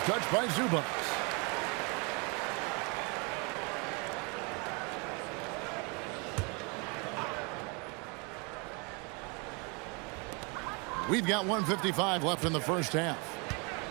Touched by Zubats. We've got 1:55 left in the first half.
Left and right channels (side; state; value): left; quieter; 31.7 dB